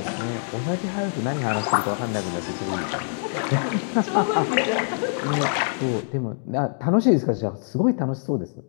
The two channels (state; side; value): silent; right; digital silence